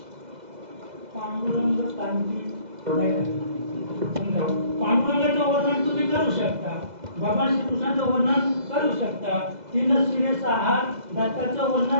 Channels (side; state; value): left; late; 2.0 ms